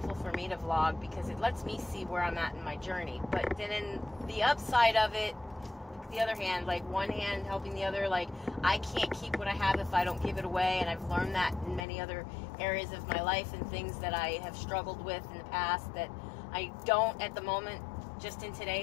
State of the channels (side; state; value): right; drops out; at 11.9 s